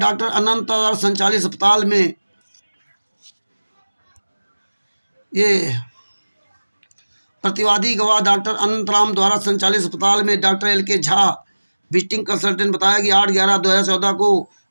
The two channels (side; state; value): both; inverted; correlation -1.00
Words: अनंत संचालित अस्पताल में ये प्रतिवादी गवाह डॉक्टर अनंतराम द्वारा संचालित अस्पताल में doctor LK Jha visiting consultant बताया कि 8/11/2014 को